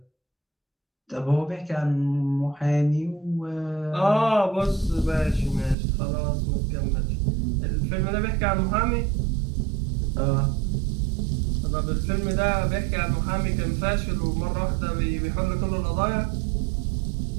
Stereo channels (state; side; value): drops out; left; at 5.8 s